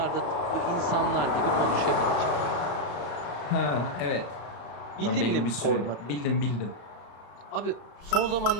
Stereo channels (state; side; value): late; right; 34 ms